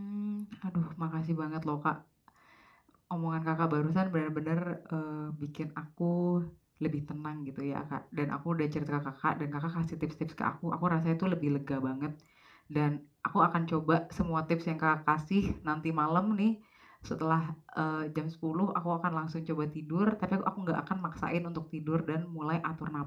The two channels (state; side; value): identical; both; correlation 1.00